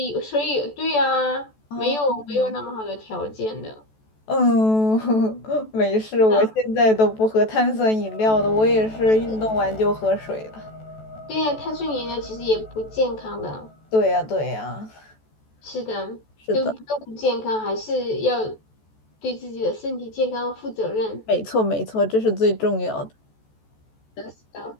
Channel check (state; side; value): late; right; 14 ms